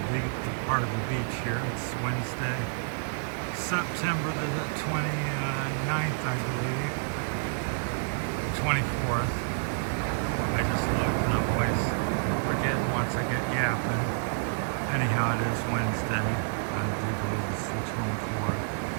part of the beach here. It's Wednesday, September the 29th, I believe, the 24th. I just looked and I'm always forgetting once I get yapping. Anyhow, it is Wednesday. I do believe it's the 24th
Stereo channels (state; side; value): silent; left; digital silence